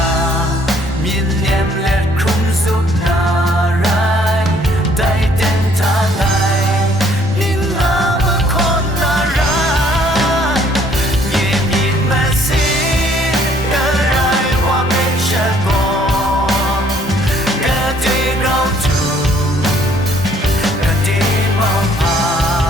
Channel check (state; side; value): normal; both; correlation 0.62